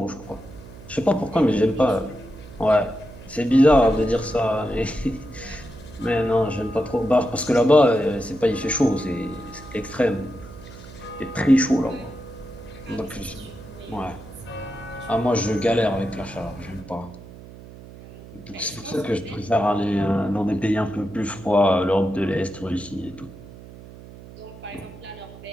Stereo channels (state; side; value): noise; right; hum, 17 dB below the sound